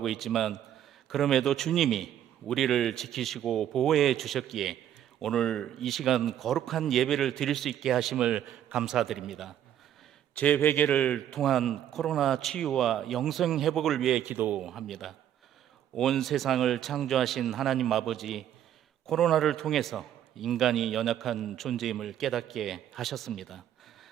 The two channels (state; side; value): quieter; left; 10.8 dB